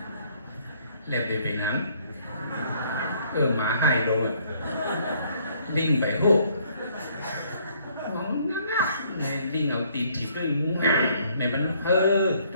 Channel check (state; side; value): inverted; both; correlation -0.64